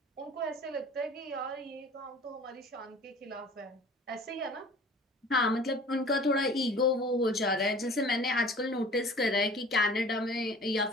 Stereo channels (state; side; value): normal; both; correlation 0.45